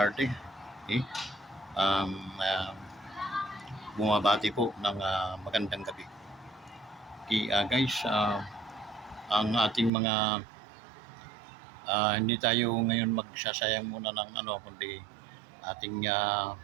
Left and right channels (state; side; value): drops out; left; at 9.9 s